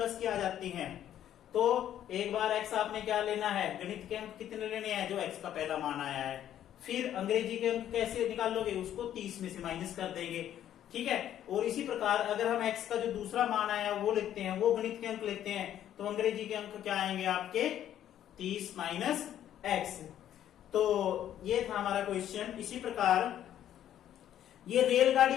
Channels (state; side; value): quieter; right; 11.1 dB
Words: की आ जाती हैं तो एक बार x आपने क्या लेना है, गणित के अंक कितने लेने हैं, जो x का पहला मान आया है। फिर अंग्रेजी के अंक कैसे निकाल लोगे, उसको 30 में से माइनस कर देंगे। ठीक है, और इसी प्रकार अगर हम x का जो दूसरा मान आया वो लेते हैं, वो गणित के अंक लेते हैं, तो अंग्रेजी के अंक क्या आएंगे आपके 30 माइनस x। तो ये था हमारा क्वेश्चन। इसी प्रकार ये